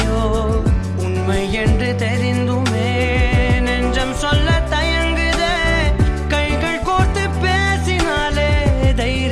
உண்மை என்று தெரிந்துமே நெஞ்சம் சொல்ல தயங்குதே கைகள் கோர்த்து பேசினாலே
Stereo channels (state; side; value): identical; both; correlation 1.00